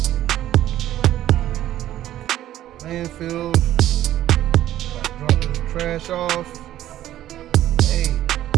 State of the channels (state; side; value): quieter; left; 13.1 dB